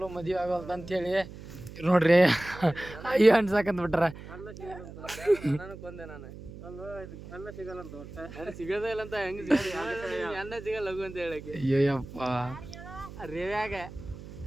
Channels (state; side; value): noise; right; hum, 14 dB below the sound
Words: ಮದುವೆ ಆಗೋಲ್ದು ಅಂತೇಳಿ ನೋಡ್ರಿ ಅಯ್ಯೋ ಅನ್ಸಾಕಂತ ಬಿಟ್ಟಾರ. ಸಿಗೋದೇ ಇಲ್ಲ ಅಂತ ಹೆಂಗ್ ಎಣ್ಣ ಸಿಗಲ್ಲ ಲಘು ಅಂತ ಹೇಳಕ್ಕೆ. ಅಯ್ಯಪ್ಪ ರೇವ್ಯಾಗ